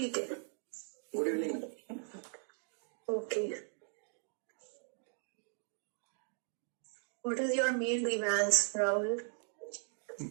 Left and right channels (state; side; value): silent; left; 52 dB below the other